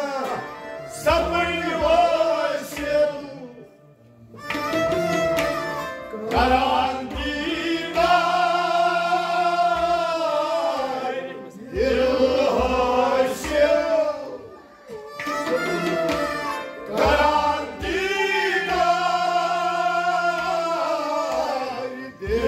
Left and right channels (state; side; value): identical; both; correlation 1.00